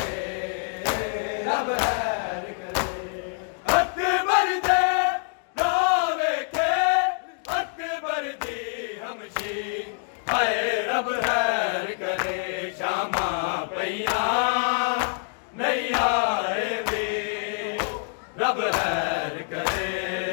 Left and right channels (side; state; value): right; silent; 55 dB below the other